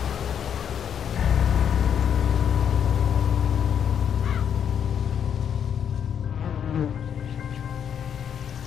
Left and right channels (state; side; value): quieter; right; 8.3 dB